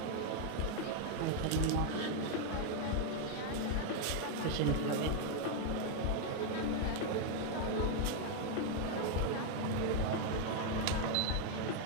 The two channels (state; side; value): different; both; correlation 0.00